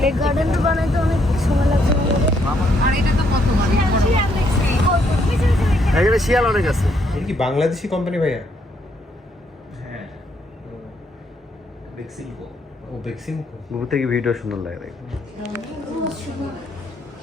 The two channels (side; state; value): both; normal; correlation 0.73